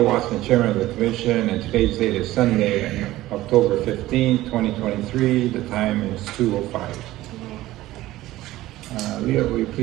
Watson, Chairman of the Commission, and today's date is Sunday, October 15, 2023. The time is 2:05. Leah, will you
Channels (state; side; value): quieter; left; 16.3 dB